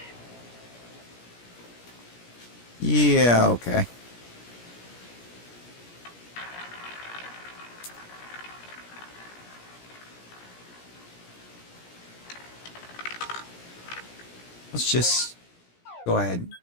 Yeah, okay. Let's just go ahead and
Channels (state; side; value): late; right; 17 ms